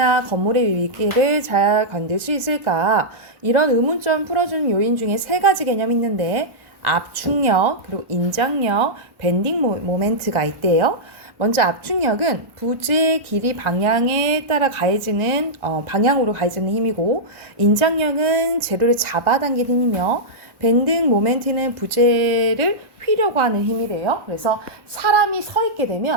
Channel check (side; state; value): left; late; 1.1 ms